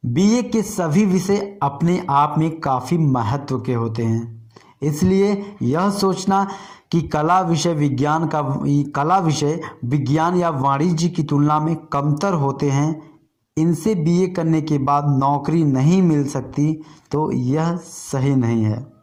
बीए के सभी विषय अपने आप में काफ़ी महत्व के होते हैं, इसलिए यह सोचना कि कला विषय विज्ञान या वाणिज्य की तुलना में कमतर होते हैं, इनसे बीए करने के बाद नौकरी नहीं मिल सकती, तो यह सही नहीं है।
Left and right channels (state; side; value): identical; both; correlation 1.00